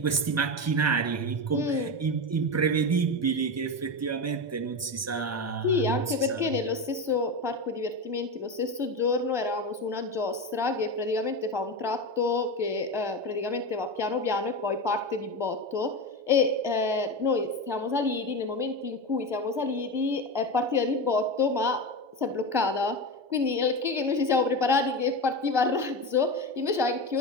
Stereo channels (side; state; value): left; late; 1.2 ms